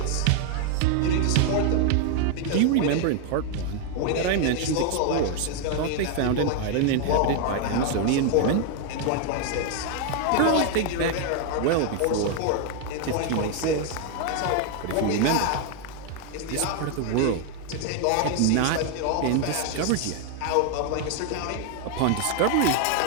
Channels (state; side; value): different; both; correlation 0.00